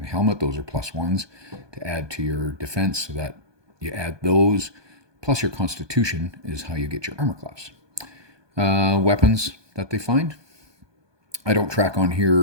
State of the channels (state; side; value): late; left; 1.2 ms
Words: helmet. Those are +1s to add to your defense, so that you add those. Plus your constitution is how you get your armor class. Weapons that they find. I don't track on